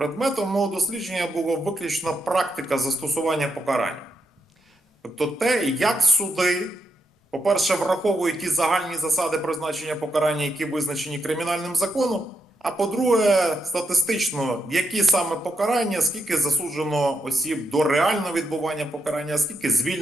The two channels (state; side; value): normal; both; correlation 0.82